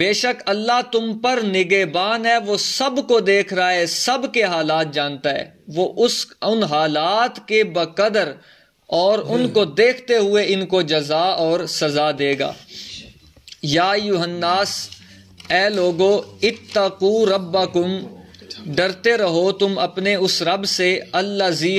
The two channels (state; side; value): identical; both; correlation 1.00